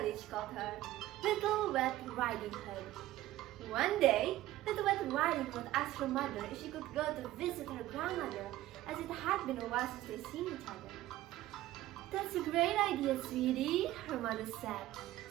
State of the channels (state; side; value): quieter; left; 15.3 dB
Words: called her Little Red Riding Hood. One day, Little Red Riding Hood asked her mother if she could go to visit her grandmother, as it had been a while since they'd seen each other. "That's a great idea, sweetie," her mother said.